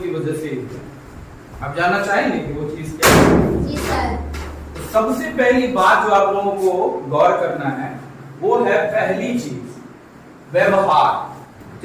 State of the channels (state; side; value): identical; both; correlation 1.00